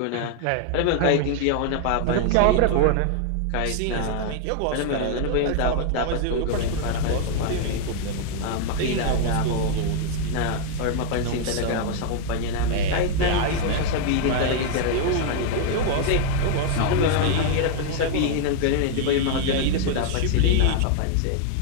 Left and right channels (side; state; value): both; different; correlation 0.00